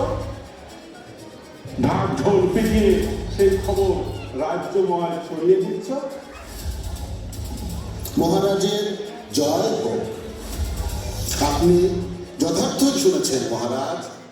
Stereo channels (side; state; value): both; identical; correlation 1.00